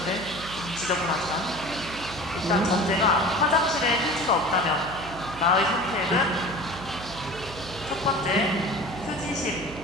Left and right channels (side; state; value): right; noise; hum, 14 dB below the sound